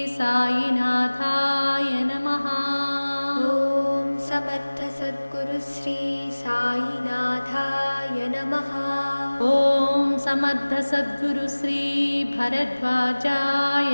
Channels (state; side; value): inverted; both; correlation -1.00